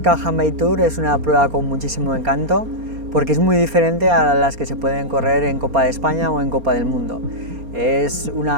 Handbike Tour es una prueba con muchísimo encanto porque es muy diferente a las que se pueden correr en Copa de España o en Copa del Mundo. Es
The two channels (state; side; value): late; left; 4.3 ms